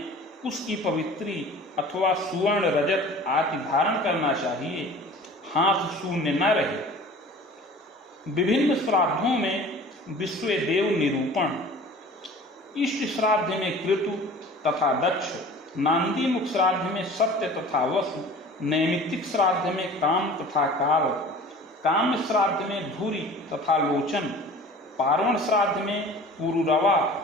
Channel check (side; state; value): both; normal; correlation 0.43